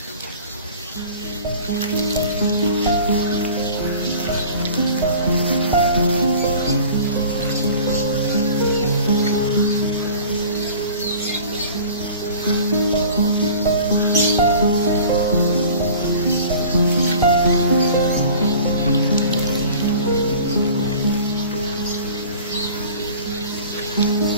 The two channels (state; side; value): inverted; both; correlation -0.44